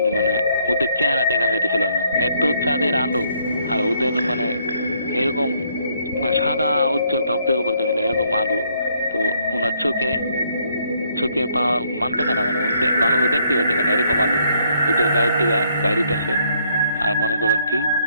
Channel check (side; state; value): both; inverted; correlation -0.69